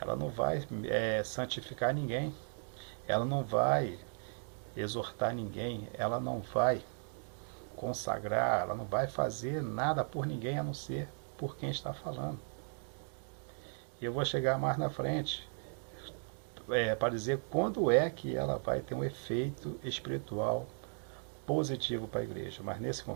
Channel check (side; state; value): left; silent; 53 dB below the other